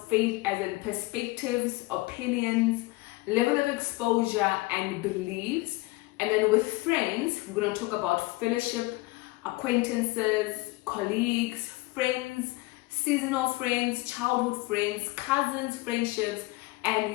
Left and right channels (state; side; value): quieter; right; 22.0 dB